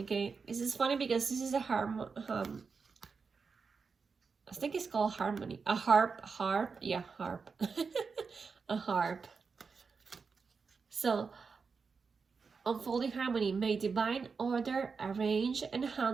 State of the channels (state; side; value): quieter; left; 5.1 dB